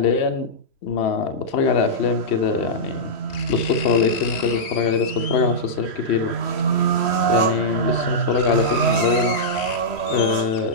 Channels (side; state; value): right; late; 3.1 ms